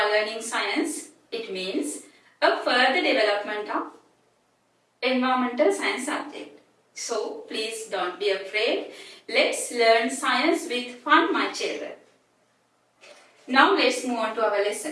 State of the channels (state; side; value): identical; both; correlation 1.00